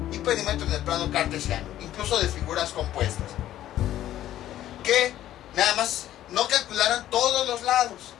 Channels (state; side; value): quieter; right; 12.8 dB